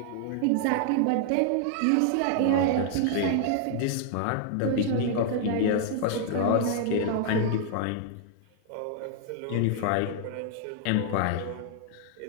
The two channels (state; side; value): different; both; correlation -0.01